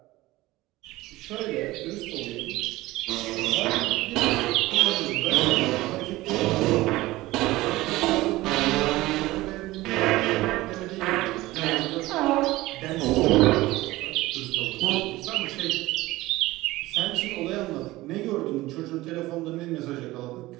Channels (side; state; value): left; quieter; 18.4 dB